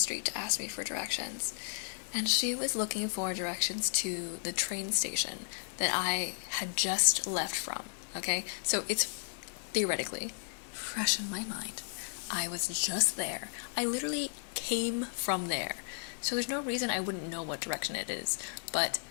to ask me for directions, and she was looking for directions to the train station that I had just left from, okay? So it's theoretically fresh in my mind. I was just there. I literally came from there. So there's no reason I wouldn't know what direction it is, but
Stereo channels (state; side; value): silent; right; digital silence